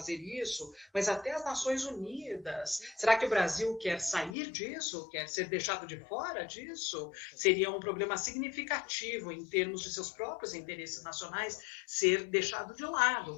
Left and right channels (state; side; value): drops out; right; at 4.4 s